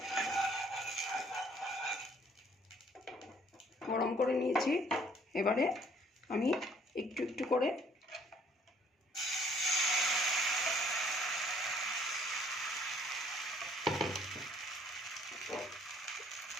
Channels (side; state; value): both; normal; correlation 0.61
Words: গরম করে নিয়েছি। এবারে আমি একটু একটু করে